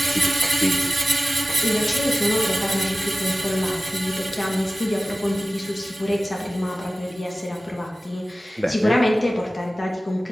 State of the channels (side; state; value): both; normal; correlation 0.96